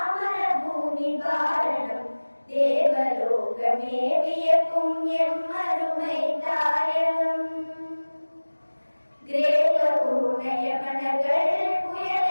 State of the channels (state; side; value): inverted; both; correlation -1.00